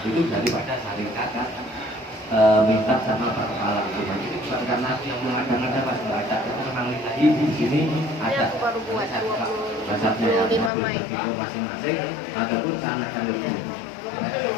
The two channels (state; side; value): drops out; right; at 10.7 s